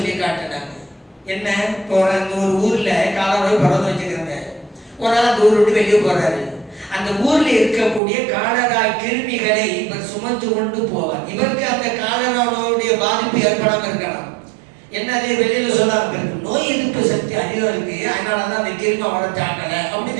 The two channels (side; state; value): left; drops out; at 8.0 s